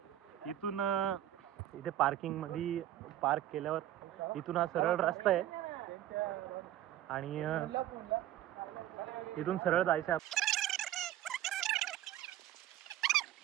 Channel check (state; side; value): quieter; left; 12.8 dB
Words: इथून इथे पार्किंग मध्ये पार्क केल्यावर इथून हा सरळ रस्ता आहे आणि इथून सरळ जायचं.